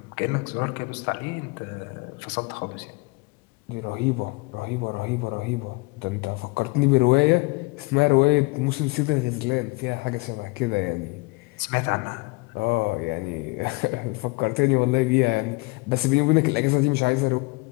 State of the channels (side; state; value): right; quieter; 25.7 dB